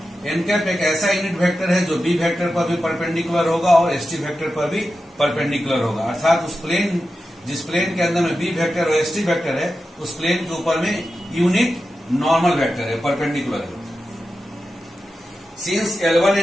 N cap एक ऐसा यूनिट वेक्टर है जो B वेक्टर पर भी परपेंडिकुलर होगा और ST वेक्टर पर भी परपेंडिकुलर होगा। अर्थात उस प्लेन जिस प्लेन के अंदर में B वेक्टर और ST वेक्टर है उस प्लेन के ऊपर में यूनिट नॉर्मल वेक्टर है, परपेंडिकुलर है। Since L1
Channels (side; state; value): both; normal; correlation 0.91